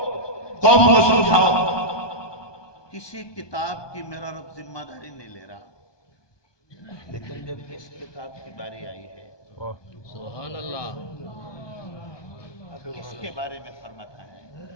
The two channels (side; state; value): right; late; 1.2 ms